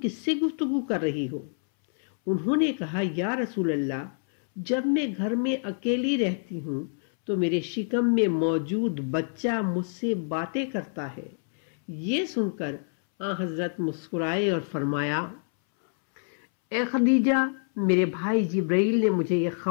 کس سے گفتگو کر رہی ہو؟ انہوں نے کہا، یا رسول اللہ، جب میں گھر میں اکیلی رہتی ہوں تو میرے شکم میں موجود بچہ مجھ سے باتیں کرتا ہے۔ یہ سن کر حضرت مسکرائے اور فرمایا، اے خدیجہ، میرے بھائی جبرائیل نے مجھے یہ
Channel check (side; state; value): right; silent; 60 dB below the other